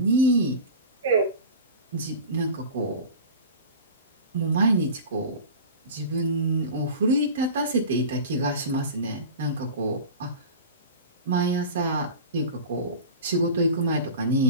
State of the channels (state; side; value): inverted; both; correlation -0.33